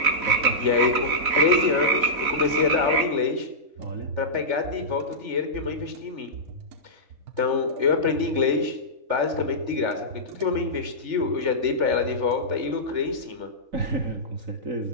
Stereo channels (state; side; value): late; left; 4.1 ms